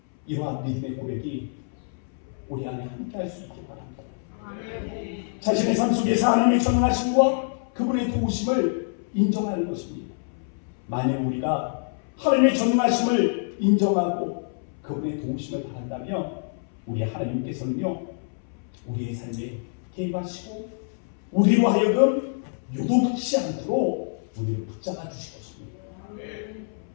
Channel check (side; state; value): right; silent; 61 dB below the other